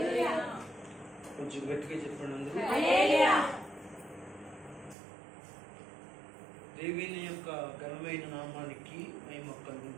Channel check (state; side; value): drops out; left; at 5.0 s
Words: కొంచెం గట్టిగా చెప్పండి అందరూ. దేవుని యొక్క ఘనమైన నామానికి మహిమ కలుగును